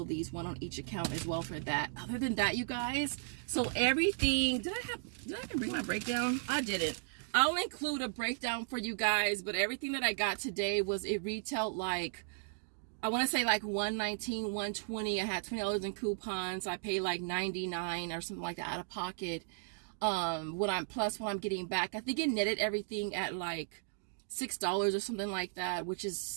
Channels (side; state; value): left; silent; digital silence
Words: of these, one on each account as well for that. Other than that, you guys, so everything, did I even bring my breakdown? I didn't. I'll include a breakdown for you guys, but everything that I got today was, it retailed like, I want to say like $119, $120. I had $20 in coupons. I paid like $99 or something like that out of pocket. What I'm getting back, I think it netted everything at like $6 or something like that, which